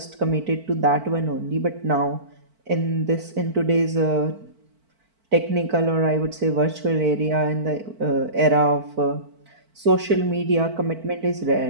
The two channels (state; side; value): late; left; 4.5 ms